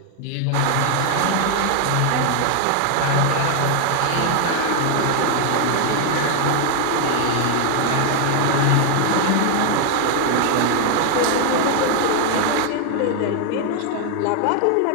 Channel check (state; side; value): different; both; correlation 0.00